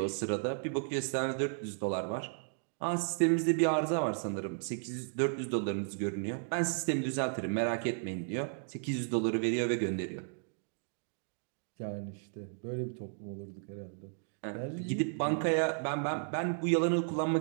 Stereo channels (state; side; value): silent; left; digital silence